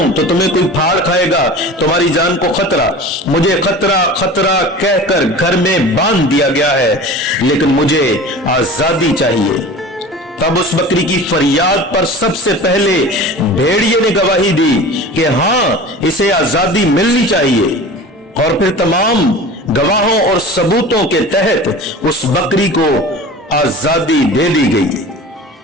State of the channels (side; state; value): both; normal; correlation 0.37